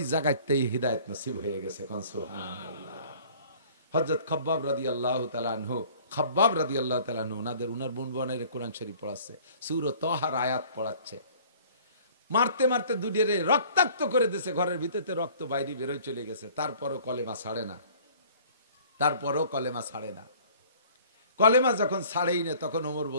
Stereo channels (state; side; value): inverted; both; correlation -0.52